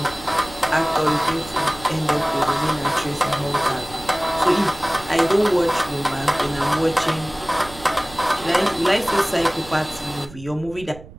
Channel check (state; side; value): noise; right; rumble, 17 dB below the sound